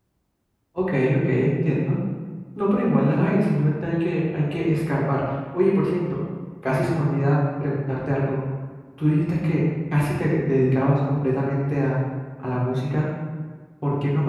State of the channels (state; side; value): identical; both; correlation 1.00